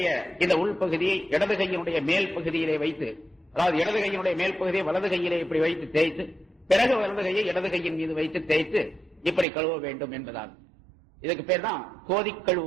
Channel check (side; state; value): left; drops out; at 9.5 s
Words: இந்த உள்பகுதியை இடது கையினுடைய மேல் பகுதியிலே வைத்து, அதாவது இடது கையினுடைய மேல் பகுதியை வலது கையிலே இப்படி வைத்து தேய்த்து, பிறகு வலது கையை இடது கையின் மீது வைத்து தேய்த்து இப்படி கழுவ வேண்டும் என்பதால் இதுக்கு பேர் தான் கோதி